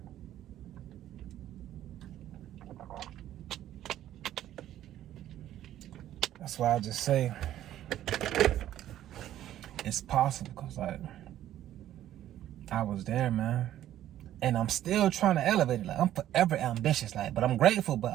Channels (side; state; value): left; quieter; 12.4 dB